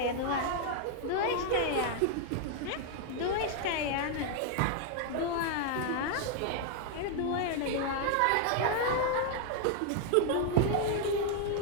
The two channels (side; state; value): both; different; correlation 0.00